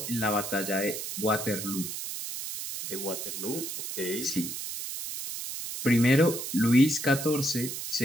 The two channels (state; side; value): noise; right; hiss, 6 dB below the sound